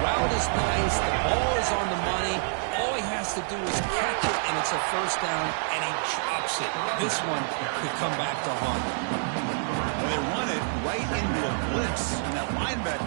route is nice. The ball is on the money. All he has to do is catch it, and it's a 1st down, and he drops it. This one could come back to haunt him. They run it right into a blitz, and that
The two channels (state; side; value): silent; left; digital silence